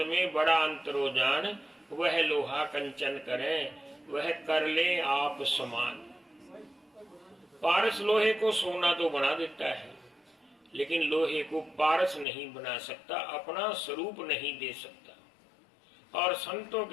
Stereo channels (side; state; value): right; drops out; at 12.2 s